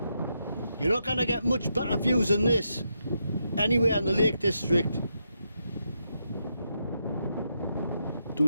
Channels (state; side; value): inverted; both; correlation -0.82